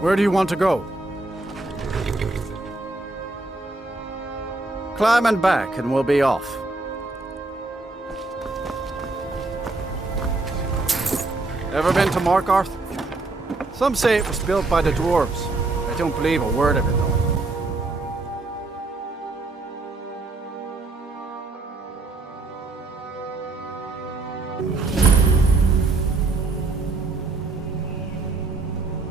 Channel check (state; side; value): quieter; left; 3.2 dB